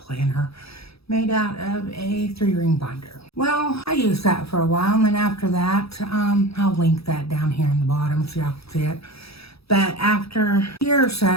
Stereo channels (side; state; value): right; late; 0.77 ms